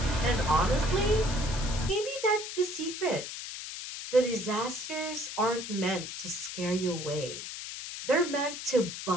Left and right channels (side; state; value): left; noise; hiss, 8 dB below the sound